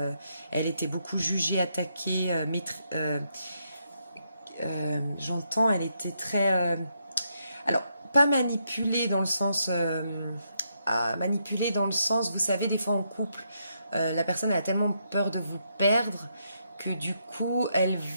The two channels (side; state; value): both; inverted; correlation -0.79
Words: elle était beaucoup jugée, attaquée, j'entends, elle était très... alors, pas manipulée dans le sens... vous savez, des fois en couple, la personne elle a tellement peur de vous perdre que du coup, elle